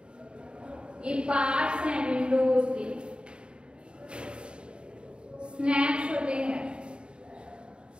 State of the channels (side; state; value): left; late; 0.053 ms